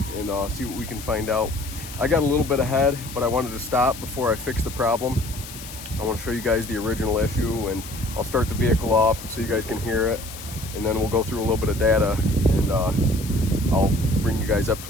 and see what we can find out. I got a little bit ahead, but I wanted to stop before I fix the problem. I want to show you guys the original issue, and I'll start the vehicle off so you guys can hear it, and then we'll go through a little bit of data, and I'll bring you guys up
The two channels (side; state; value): left; noise; hiss, 13 dB below the sound